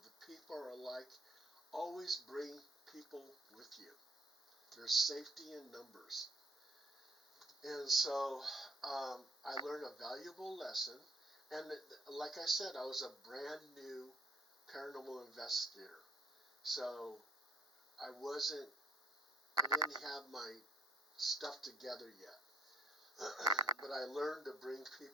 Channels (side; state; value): both; normal; correlation 0.61